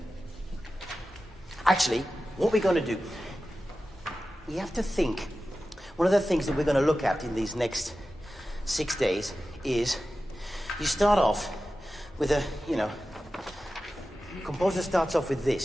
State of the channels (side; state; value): both; normal; correlation 0.93